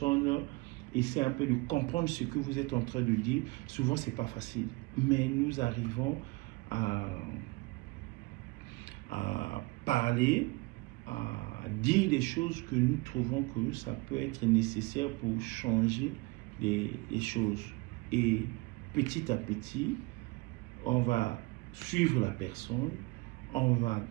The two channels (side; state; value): left; quieter; 24.5 dB